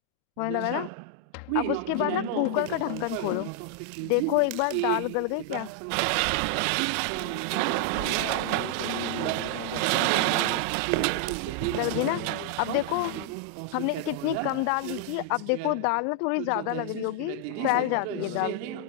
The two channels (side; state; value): both; different; correlation 0.00